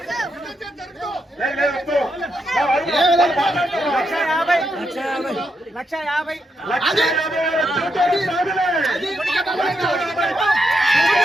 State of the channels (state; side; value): normal; both; correlation 0.81